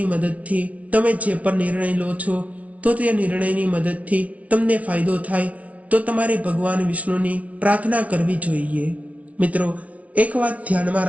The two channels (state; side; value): late; left; 0.067 ms